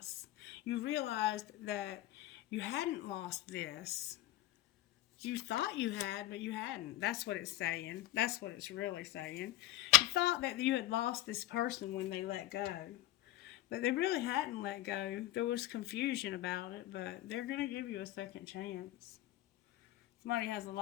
You realized that you hadn't lost this. You thought you had, but you hadn't. That's what it's saying. That's what it's really saying. You thought that you had lost this person when they let go. But they really hadn't let go. There was confusion about it, but they're going to give you a second chance. Somebody has a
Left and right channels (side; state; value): right; quieter; 15.2 dB